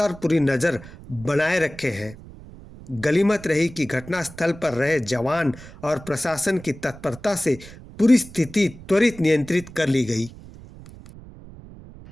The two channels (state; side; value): noise; right; rumble, 18 dB below the sound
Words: पूरी नज़र बनाए रखे हैं। गनीमत रही कि घटनास्थल पर रहे जवान और प्रशासन की तत्परता से पूरी स्थिति त्वरित नियंत्रित कर ली गई।